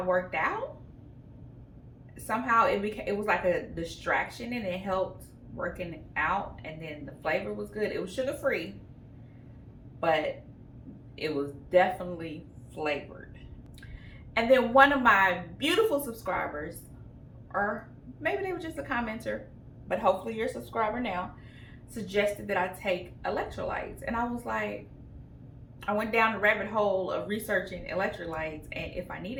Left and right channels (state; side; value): identical; both; correlation 1.00